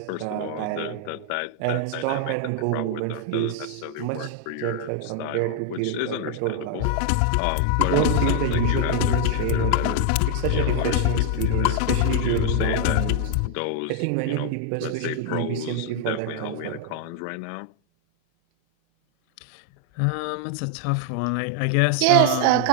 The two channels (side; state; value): both; different; correlation 0.00